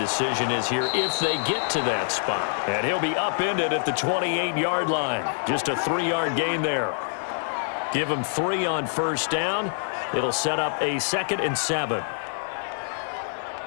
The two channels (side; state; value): right; silent; digital silence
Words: is here if they get to that spot. And he'll be upended at the 28-yard line. Just a 3-yard gain there. Give him 3 on first down. It'll set up a 2nd and 7.